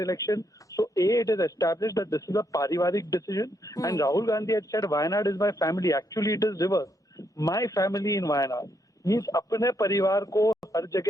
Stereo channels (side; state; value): both; normal; correlation 0.77